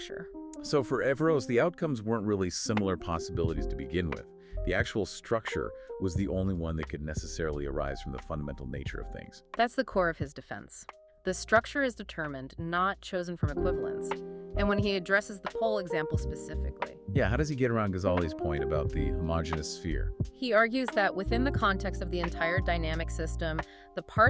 So for Averroes, the outcomes weren't really similar possibilities to begin with. The actual structure was the only one that could necessarily arise from the fundamental nature of things. That's the core of his defense. The structure is determined, not chosen from equivalence. And when he addresses the pole example specifically, Yeah, how does he get around Ghazali's point about the homogeneous sphere? he argues that within the context of the entire dynamic system, the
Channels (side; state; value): both; identical; correlation 1.00